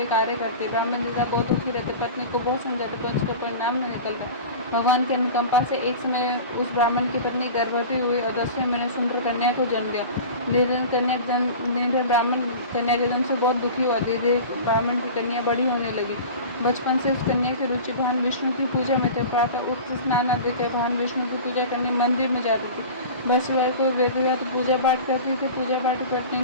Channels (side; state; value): both; inverted; correlation -0.35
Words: कार्य करती। ब्राह्मण नेता बहुत दुखी रहते, पत्नी को बहुत समझाते, पर उसका परिणाम न निकलता। भगवान की अनुकंपा से एक समय उस ब्राह्मण की पत्नी गर्भवती हुई और 10वें महीने सुंदर कन्या को जन्म दिया। निर्धन ब्राह्मण कन्या के जन्म से बहुत दुखी हुआ। धीरे ब्राह्मण की कन्या बड़ी होने लगी। बचपन से उस कन्या की रुचि भगवान विष्णु की पूजा में थे। प्रातः उठते स्नान आदि कर भगवान विष्णु की पूजा करने मंदिर में जाती थी। बृहस्पतिवार को विधिवत पूजा पाठ करती थी। पूजा पाठ करने